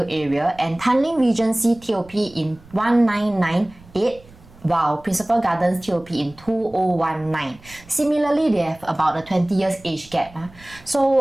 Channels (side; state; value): right; noise; rumble, 24 dB below the sound